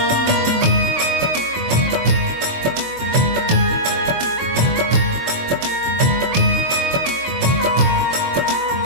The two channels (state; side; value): late; left; 23 ms